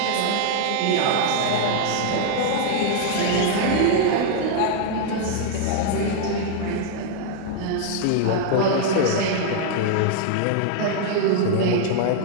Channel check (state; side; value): different; both; correlation 0.00